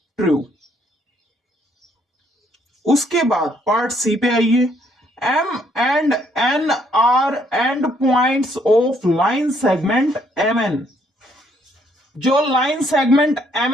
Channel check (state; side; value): normal; both; correlation 0.68